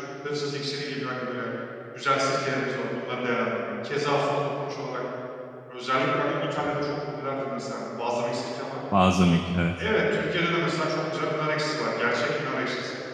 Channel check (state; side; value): identical; both; correlation 1.00